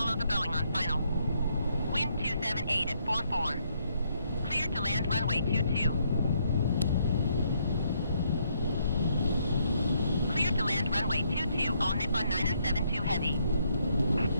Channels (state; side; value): inverted; both; correlation -0.73